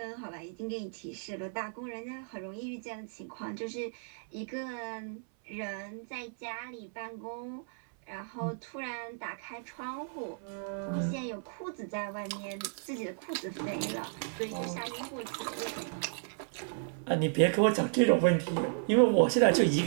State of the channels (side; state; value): left; silent; 55 dB below the other